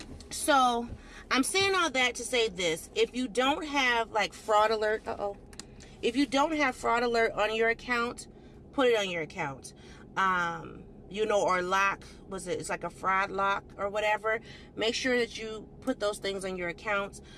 So I'm saying all that to say this. If you don't have like fraud alert, if you don't have fraud alert on your account, put it on your account. Or lock, it's like a fraud lock or whatever. Make sure that you put those things on your accounts,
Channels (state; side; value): identical; both; correlation 1.00